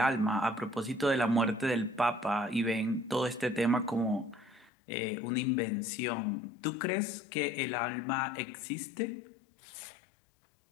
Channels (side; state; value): right; drops out; at 4.7 s